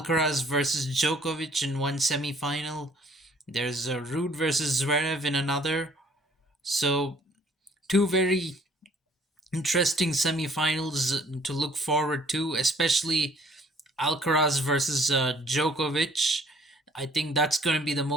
versus Djokovic in one semifinal. There's Ruud versus Zverev in another. So, two very interesting semifinals to look forward to, especially Alcaraz versus Djokovic. I think that's going to be the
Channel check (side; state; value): both; normal; correlation 0.59